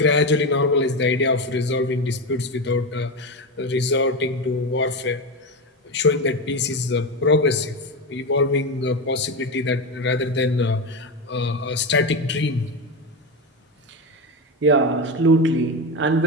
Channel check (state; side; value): normal; both; correlation 0.16